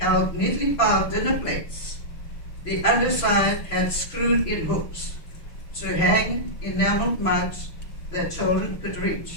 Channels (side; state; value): right; late; 6.0 ms